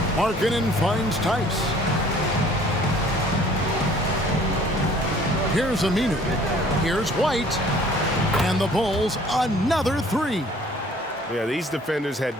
Markkanen finds Tice. Here's Aminu. Here's White. And the Bulls, another 3. Yeah, these defenders had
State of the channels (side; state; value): both; normal; correlation 0.54